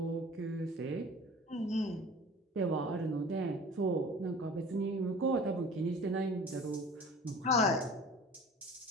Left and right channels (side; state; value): both; normal; correlation 0.43